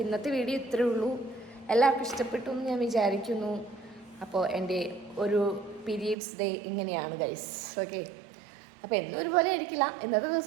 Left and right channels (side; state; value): left; drops out; at 6.2 s